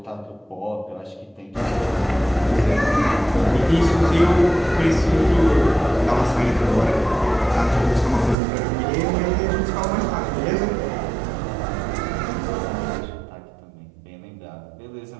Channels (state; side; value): drops out; left; at 8.3 s